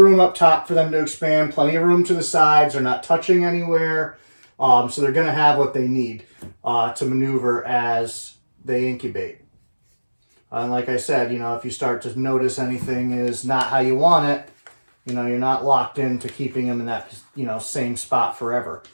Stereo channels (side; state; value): both; inverted; correlation -1.00